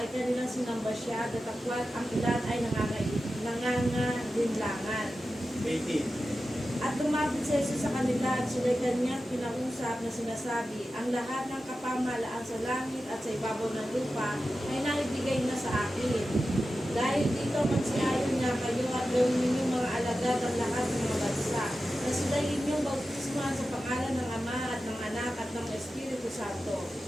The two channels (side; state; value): both; normal; correlation 0.93